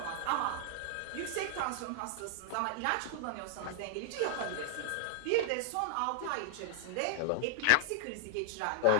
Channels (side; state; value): both; different; correlation -0.01